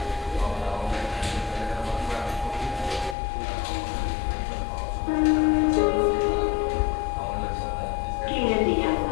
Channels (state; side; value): drops out; right; at 3.2 s